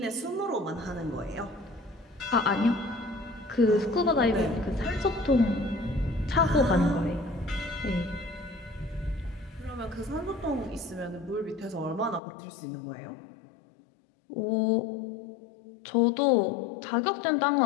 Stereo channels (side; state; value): right; drops out; at 12.2 s